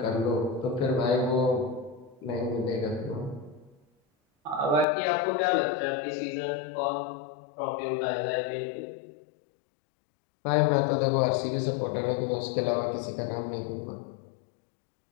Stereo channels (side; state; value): right; drops out; at 4.9 s